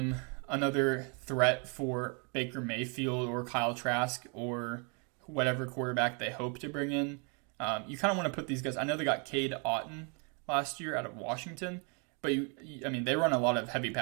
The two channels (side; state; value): left; quieter; 36.2 dB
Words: another threat for Baker Mayfield or Kyle Trask or whatever quarterback they hope to bring in. You kind of want to put these guys. I know they got Cade Otton last year out of Washington, but they run a lot of heavy